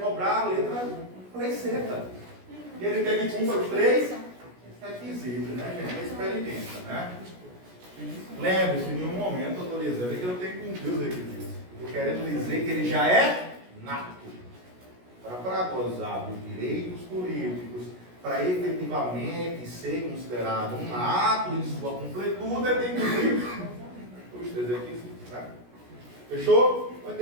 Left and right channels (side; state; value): left; late; 16 ms